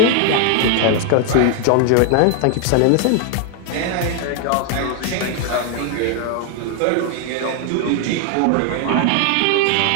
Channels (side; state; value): both; different; correlation 0.00